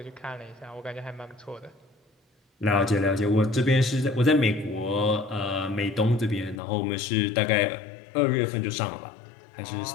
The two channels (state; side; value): drops out; right; at 6.6 s